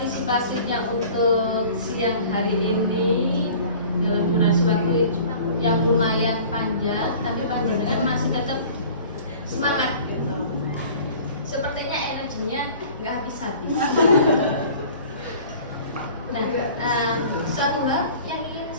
untuk siang hari ini dalam durasi waktu yang lumayan panjang, tapi panjenengan masih tetap semangat gitu. Sepertinya energinya nggak habis-habis. Nah, suatu hal yang ingin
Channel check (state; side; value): inverted; both; correlation -0.46